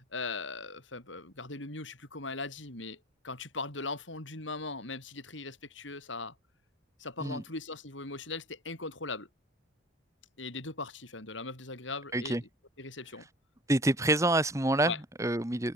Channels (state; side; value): normal; both; correlation 0.41